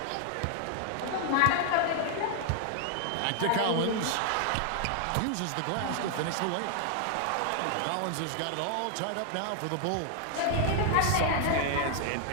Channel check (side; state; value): both; different; correlation 0.00